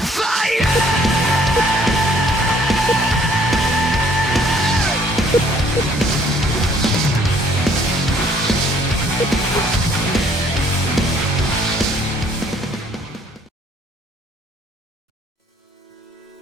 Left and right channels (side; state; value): both; normal; correlation 0.62